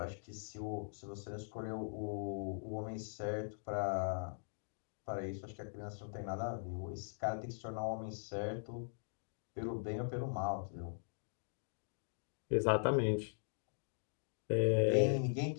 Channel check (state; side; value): silent; right; digital silence